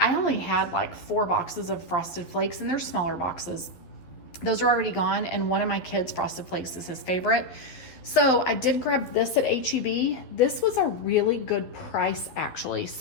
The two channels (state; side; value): late; right; 12 ms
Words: only had like 4 boxes of Frosted Flakes, and they're smaller boxes. Those are already gone, and one of my kids' Frosted Flakes is his favorite. So I did grab this at H-E-B. This was a really good price, actually.